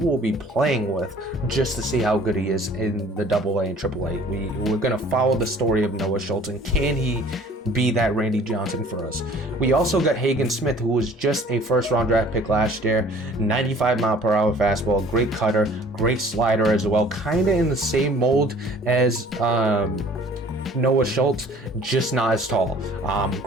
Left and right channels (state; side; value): normal; both; correlation 0.51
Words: be playing with just to see how good he is in the AA and AAA. We're gonna follow the story of Noah Schultz, and can he be that Randy Johnson for us? We also got Hagen Smith, who was just a first-round draft pick last year, 95 mile per hour fastball, great cutter, great slider as well, kind of in the same mold as Noah Schultz, just not as tall.